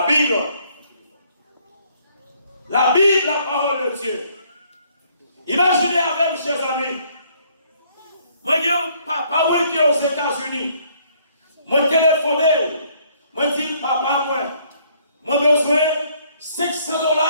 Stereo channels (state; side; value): inverted; both; correlation -0.65